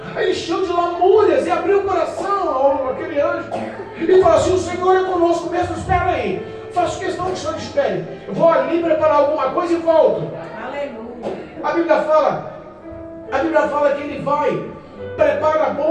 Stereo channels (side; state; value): both; identical; correlation 1.00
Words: Ele encheu de lamúrias e abriu o coração àquele anjo. E falou assim, o Senhor é conosco mesmo, espera aí. Faço questão que o Senhor espere. Eu vou ali preparar alguma coisa e volto. A Bíblia fala que ele vai, prepara